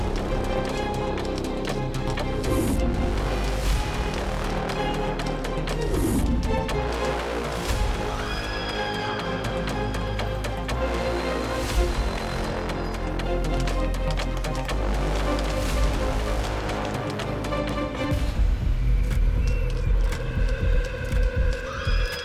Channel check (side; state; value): both; identical; correlation 1.00